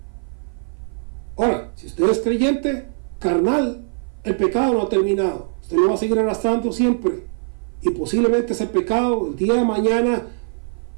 Ahora, si usted es creyente carnal, el pecado no ha terminado. Usted lo va a seguir arrastrando siempre, y posiblemente ese pecado el día de mañana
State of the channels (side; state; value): left; silent; 56 dB below the other